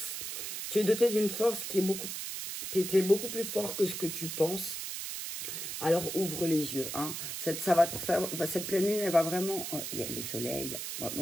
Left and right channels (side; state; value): right; noise; hiss, 5 dB below the sound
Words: Tu es doté d'une force qui est beaucoup... Tu es beaucoup plus fort que ce que tu penses. Alors, ouvre les yeux. Hein. Ça va te faire, cette pleine lune, elle va vraiment... il y a le soleil. Moi,